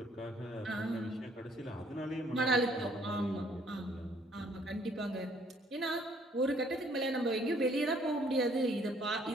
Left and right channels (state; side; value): normal; both; correlation 0.63